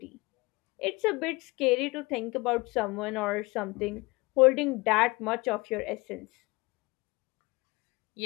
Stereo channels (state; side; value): quieter; right; 24.0 dB